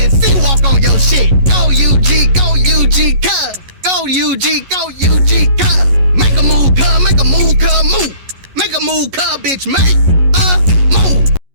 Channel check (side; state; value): left; late; 11 ms